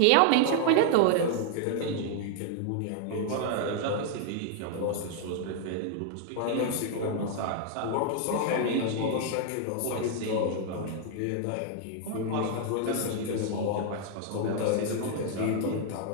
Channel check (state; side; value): different; both; correlation 0.00